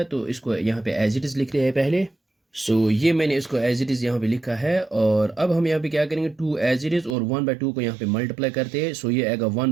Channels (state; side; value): drops out; left; at 7.2 s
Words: तो इसको यहाँ पे एज इट इज़ लिखते हैं पहले। सो ये मैंने इसको एज इट इज़ यहाँ पे लिखा है, और अब हम यहाँ पे क्या करेंगे, 2 एज इट इज़ और 1/2 को यहाँ पे मल्टीप्लाई करते हैं। सो ये आएगा